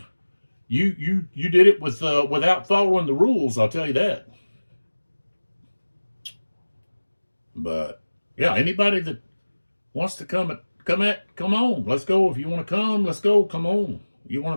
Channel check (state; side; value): inverted; both; correlation -1.00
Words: You did it without following the rules. I'll tell you that. But yeah, anybody that wants to come on. Let's go. If you want to come, let's go. Come on. You